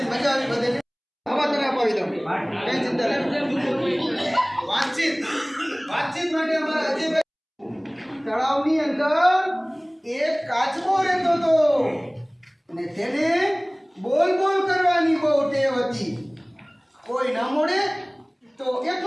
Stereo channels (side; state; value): both; identical; correlation 1.00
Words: મજા આવી બધે. હવા તને અપાવી. હતી. કોઈ ન મળે તો